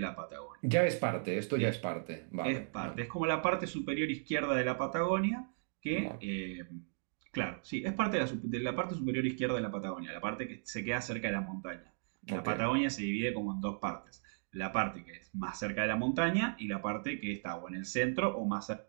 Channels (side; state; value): left; silent; digital silence